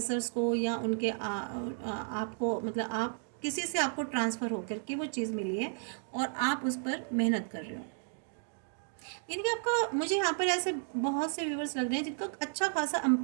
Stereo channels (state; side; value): silent; left; 56 dB below the other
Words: को या उनके आपको मतलब आप किसी से आपको ट्रांसफ़र होकर के वो चीज़ मिली है और आप उस पर मेहनत कर रहे हो। यानी कि आपका, मुझे यहाँ पर ऐसे बहुत से व्यूवर्स लग रहे हैं जिनका अच्छा खासा